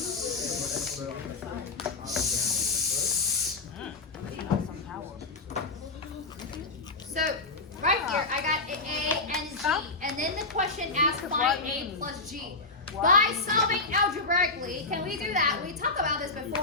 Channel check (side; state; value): right; quieter; 3.6 dB